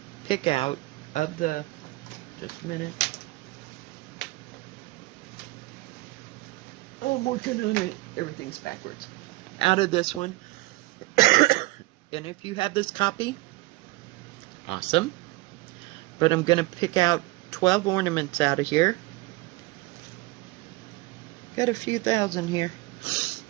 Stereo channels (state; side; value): quieter; left; 21.3 dB